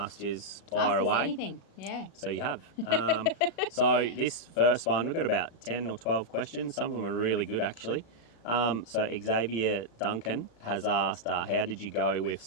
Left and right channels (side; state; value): right; late; 36 ms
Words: you fire Ask us away. anything, yeah. So you have. So this first one, we've got about 10 or 12 questions. Some of them are really good, actually. So Xavier Duncan has asked, how did you go with